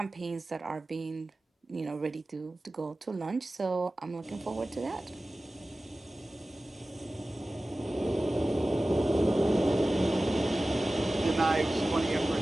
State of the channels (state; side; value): normal; both; correlation 0.96